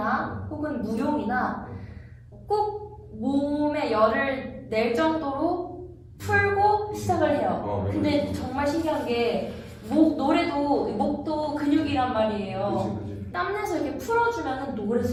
혹은 무용이나 꼭 몸에 열을 낼 정도로 풀고 시작을 해요. 근데 정말 신기한 게 노래도 목도 근육이란 말이에요. 그치. 땀내서 이렇게 풀어주면 노래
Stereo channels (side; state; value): both; identical; correlation 1.00